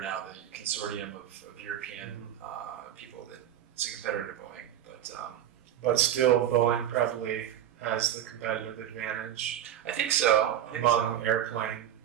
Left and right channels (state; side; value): quieter; left; 10.9 dB